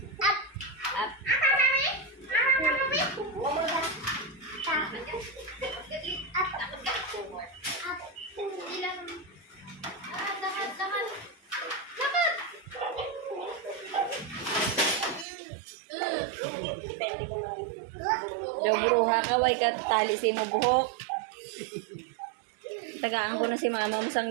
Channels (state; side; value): drops out; left; at 15.2 s